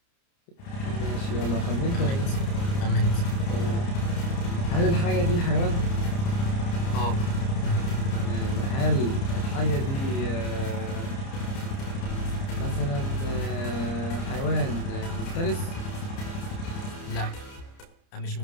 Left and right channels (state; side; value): late; right; 30 ms